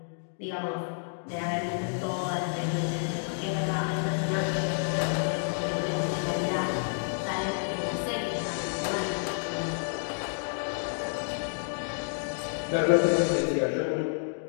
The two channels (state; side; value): silent; right; digital silence